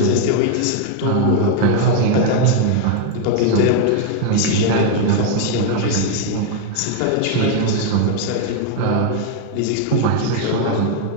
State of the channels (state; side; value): different; both; correlation 0.01